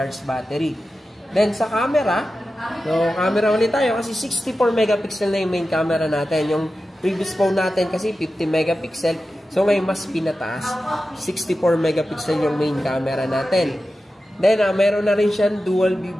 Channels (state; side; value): normal; both; correlation 0.93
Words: battery. Then, sa camera, so, camera ulit tayo kasi 64 megapixel na yung main camera natin. Yung previous phone natin kasi 50 megapixel. So, ngayon mas pinataas. 64 megapixel yung main camera natin. Then, meron na rin siyang dual view